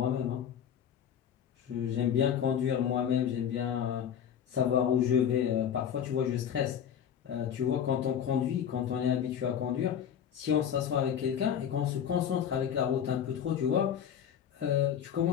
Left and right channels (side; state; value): right; quieter; 8.8 dB